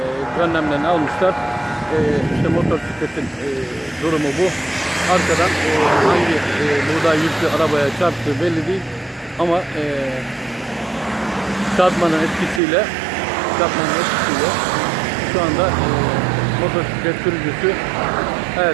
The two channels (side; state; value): left; drops out; at 12.6 s